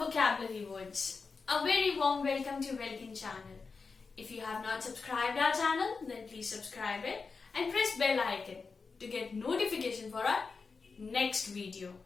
words. A very warm welcome to Welkin channel. If you have not subscribed our channel, then please subscribe it and press bell icon to get notification for our next video.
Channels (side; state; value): right; quieter; 4.7 dB